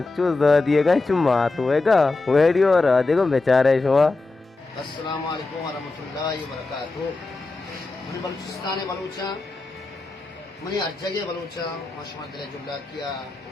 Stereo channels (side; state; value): right; quieter; 3.4 dB